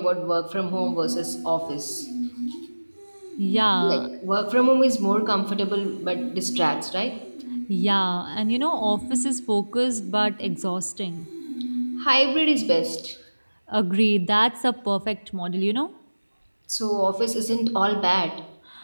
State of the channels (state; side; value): inverted; both; correlation -1.00